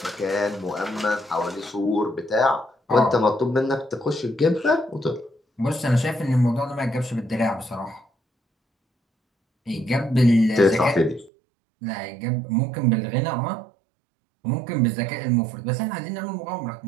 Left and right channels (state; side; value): drops out; left; at 11.3 s